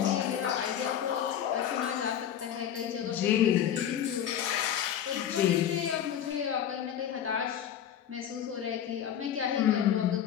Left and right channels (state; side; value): quieter; right; 9.8 dB